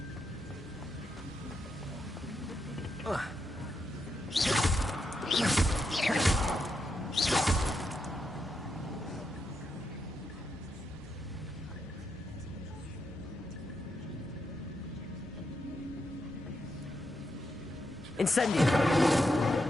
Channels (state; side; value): normal; both; correlation 0.83